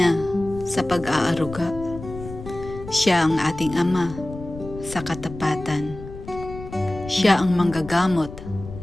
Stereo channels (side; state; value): left; noise; rumble, 13 dB below the sound